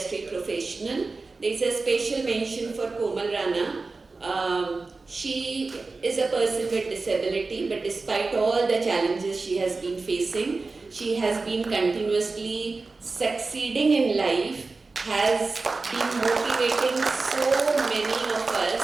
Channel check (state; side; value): quieter; left; 3.8 dB